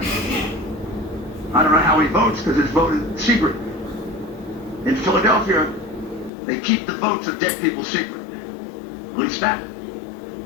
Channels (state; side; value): drops out; right; at 6.3 s